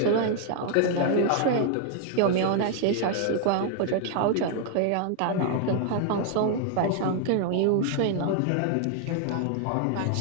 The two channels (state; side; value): different; both; correlation 0.00